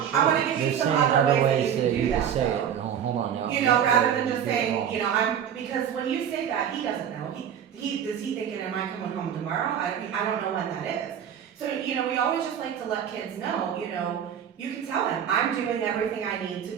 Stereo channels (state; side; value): quieter; left; 8.8 dB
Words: I wanna reassurance. give They're you some saying other other ways ways that that you you can do can that, say though. it. No, hold on now. You know, rather than just You're saying, wrong. you know, because when you say that, he doesn't know. He is he thinking, am I coming home tomorrow? I don't know when that is. So, you know, we always just like to let kids know, you know, you can tell them, I'm doing everything I need to